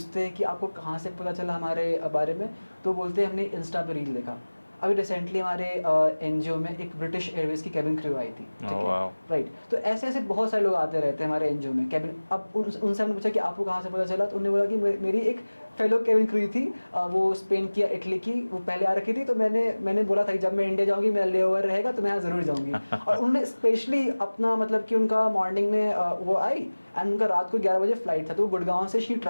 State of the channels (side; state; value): both; inverted; correlation -1.00